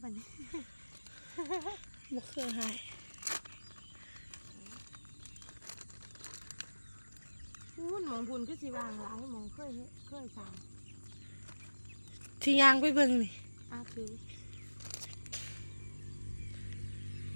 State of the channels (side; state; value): both; inverted; correlation -1.00